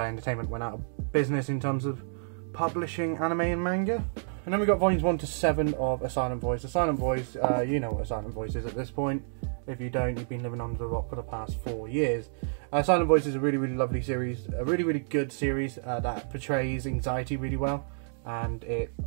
Entertainment went out of business in terms of publishing anime and manga. And then we got volumes 1 to 7 of A Silent Voice. A Silent Voice, you know what A Silent Voice is at this point. If you don't, you've been living under a rock for the past 4 years. Silent Voice is a really, really lovely series, a really, really good series that portrays anxiety really well, and it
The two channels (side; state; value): left; silent; digital silence